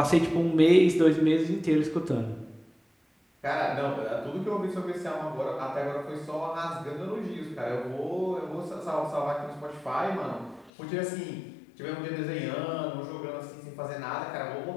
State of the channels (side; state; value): right; drops out; at 10.7 s